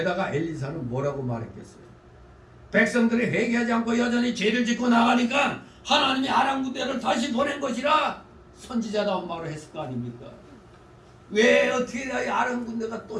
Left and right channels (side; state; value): both; identical; correlation 1.00